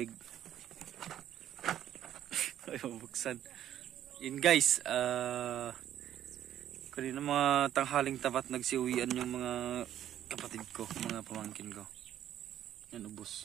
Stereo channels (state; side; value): quieter; left; 11.3 dB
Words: Ay, mabuksan. Yun guys, kanina mga tanghaling tapat nagsiuwian yung mga kapatid ko, mga pamangkin ko. Yan,